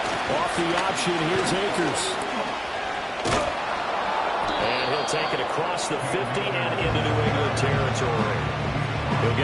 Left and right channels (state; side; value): identical; both; correlation 1.00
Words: Off the option, here's Akers. And he'll take it across the 50 and into New England territory. He'll